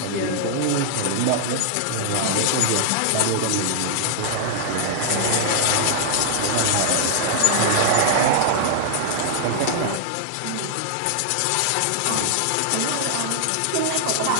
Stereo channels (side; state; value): both; different; correlation -0.01